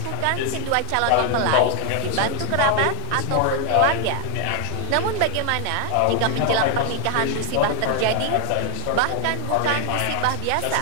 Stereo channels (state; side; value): different; both; correlation 0.00